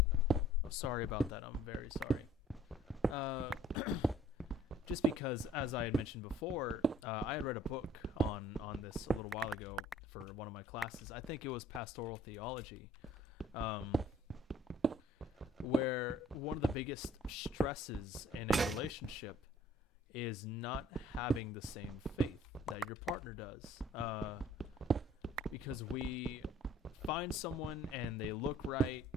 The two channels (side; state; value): both; normal; correlation 0.55